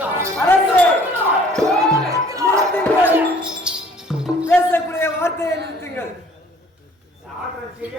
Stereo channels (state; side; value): normal; both; correlation 0.55